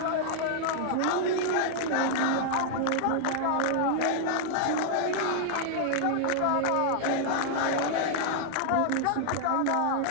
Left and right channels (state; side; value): different; both; correlation -0.01